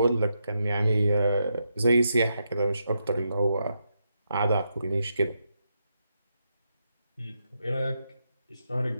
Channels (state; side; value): inverted; both; correlation -0.83